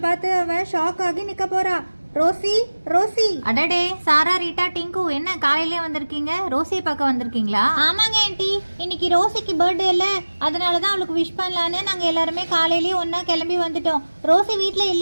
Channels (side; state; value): both; inverted; correlation -1.00